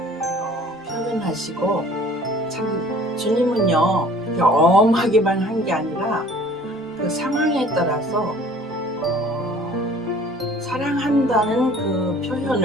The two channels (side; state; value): both; normal; correlation 0.51